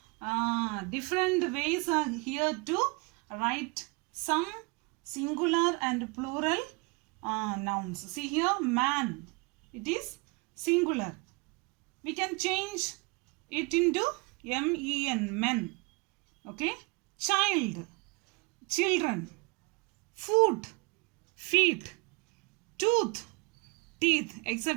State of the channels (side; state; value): left; quieter; 28.4 dB